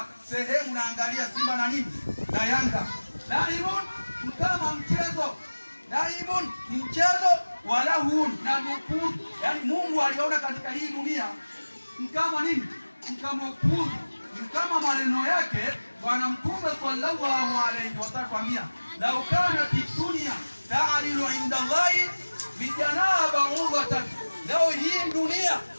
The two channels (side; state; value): both; inverted; correlation -1.00